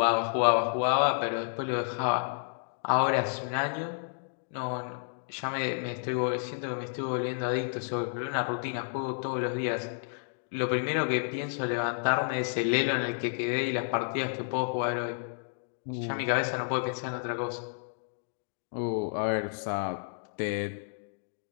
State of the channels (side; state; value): right; silent; digital silence